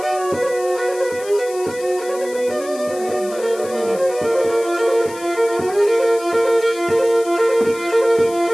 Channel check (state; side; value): noise; left; hiss, 17 dB below the sound